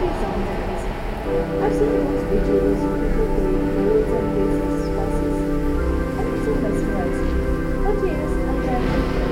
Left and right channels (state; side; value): identical; both; correlation 1.00